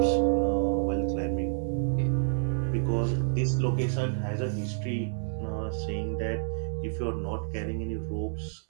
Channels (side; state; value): left; silent; 58 dB below the other